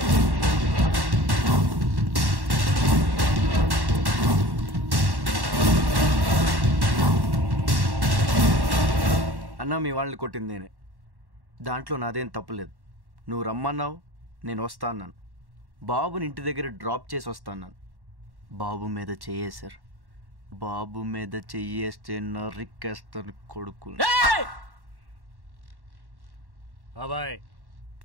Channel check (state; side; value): late; left; 1.1 ms